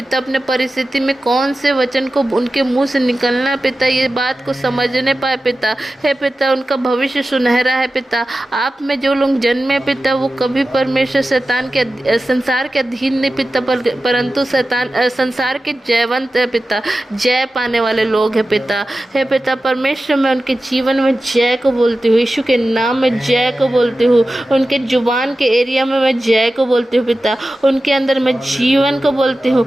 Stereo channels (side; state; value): both; normal; correlation 0.94